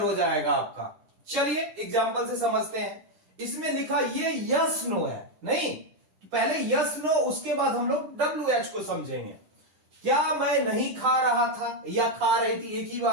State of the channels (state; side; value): late; left; 9.9 ms